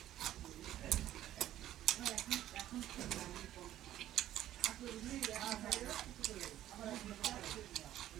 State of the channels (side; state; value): left; quieter; 12.9 dB